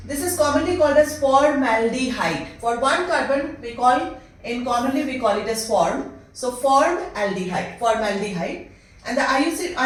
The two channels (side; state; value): both; identical; correlation 1.00